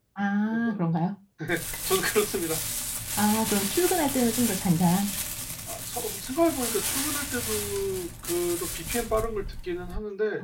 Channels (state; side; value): identical; both; correlation 1.00